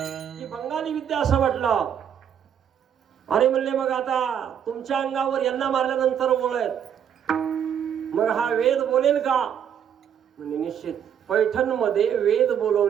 की बंगाली विद्या असं वाटलं. अरे म्हणले मग आता तुमच्या अंगावर यांना मारल्यानंतर ओळ आहेत, मग हा वेद बोलेल का? म्हणजे निश्चित. पैठणमध्ये वेद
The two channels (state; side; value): quieter; left; 8.7 dB